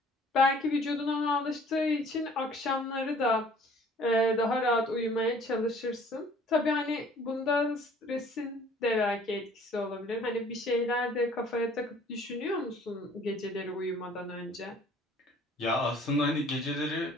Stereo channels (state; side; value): normal; both; correlation 0.54